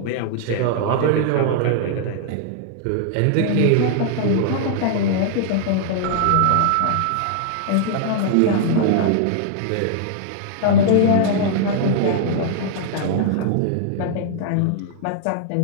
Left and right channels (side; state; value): both; different; correlation -0.01